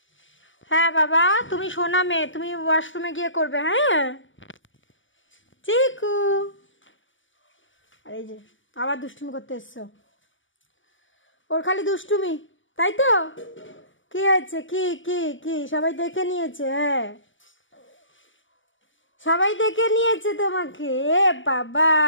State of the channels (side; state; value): right; late; 0.56 ms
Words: হ্যাঁ বাবা, তুমি শোনা মেয়ে, তুমি ওয়াশরুমে গিয়ে করবে। হ্যাঁ চিকু, আর এই যে আবার দুষ্টুমি করতে এসছো। ওর খালি দুষ্টুমি, তাই তো? কি হয়েছে? কি কি কি সবাই দেখে নিয়েছে? হ্যাঁ সবাই দেখে নিয়েছে তোমাকে। এ বাবা,